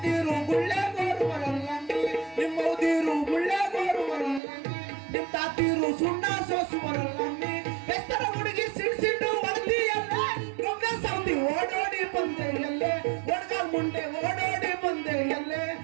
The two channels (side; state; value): left; drops out; at 4.4 s